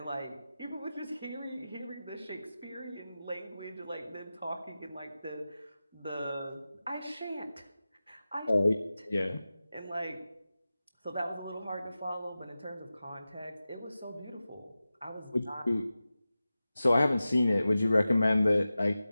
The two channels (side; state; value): both; inverted; correlation -0.94